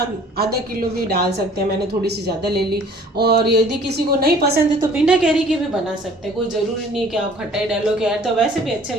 आधा किलो भी डाल सकते हैं, मैंने थोड़ी सी ज़्यादा ले ली। और यदि किसी को नहीं पसंद है तो बिना कैरी के भी बना सकते हैं, कोई ज़रूरी नहीं कि आप खटाई डालो। कैर तो वैसे भी अच्छे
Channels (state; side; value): normal; both; correlation 0.53